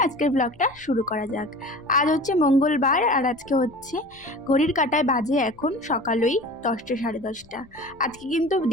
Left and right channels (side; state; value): left; noise; rumble, 27 dB below the sound